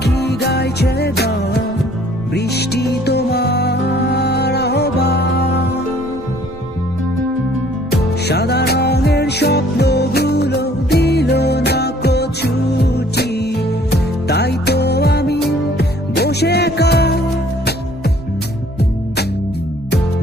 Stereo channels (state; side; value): normal; both; correlation 0.58